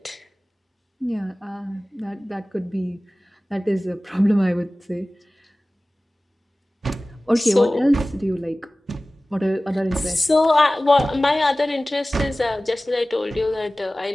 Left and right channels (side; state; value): both; normal; correlation 0.97